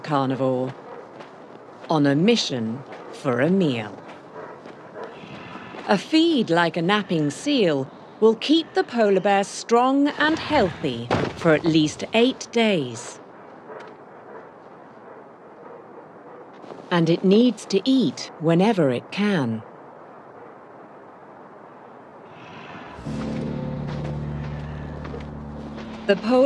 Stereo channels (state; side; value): identical; both; correlation 1.00